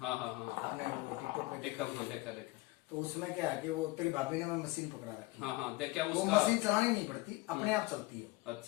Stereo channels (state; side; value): quieter; right; 21.1 dB